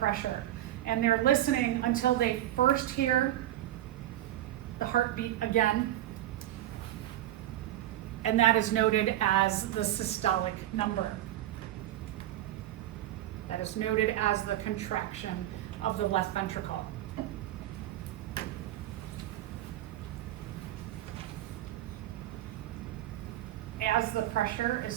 And they're listening until they first hear the heartbeat again. And that is noted as the systolic number. That is noted as the contraction of the left ventricle. As the pressure is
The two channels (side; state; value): left; quieter; 13.5 dB